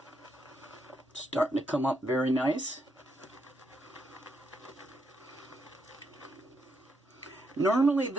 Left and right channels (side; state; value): both; normal; correlation 0.79